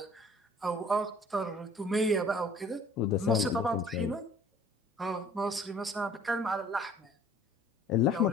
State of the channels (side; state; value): both; normal; correlation 0.53